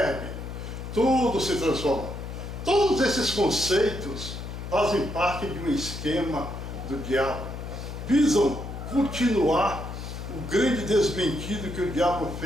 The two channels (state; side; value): noise; left; hum, 8 dB below the sound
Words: tudo se transforma. Todos esses conceitos fazem parte de um esquema do diabo. Visam continuar o grande desmentido que o diabo